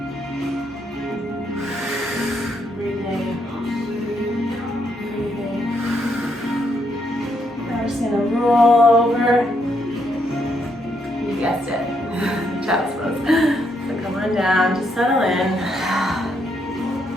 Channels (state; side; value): normal; both; correlation 0.76